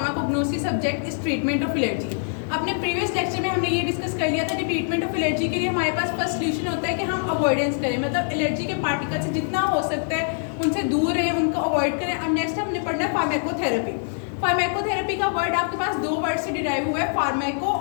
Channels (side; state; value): right; silent; digital silence